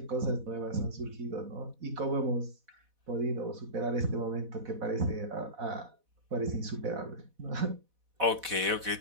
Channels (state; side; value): late; left; 4.1 ms